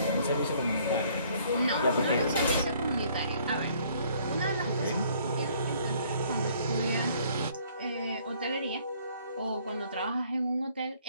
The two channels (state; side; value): inverted; both; correlation -0.61